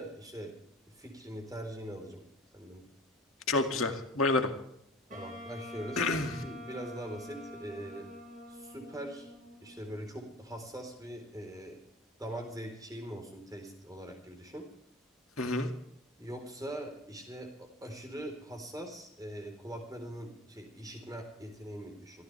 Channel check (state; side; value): normal; both; correlation 0.39